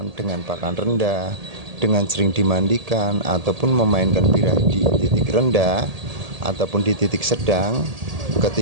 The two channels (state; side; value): late; left; 1.8 ms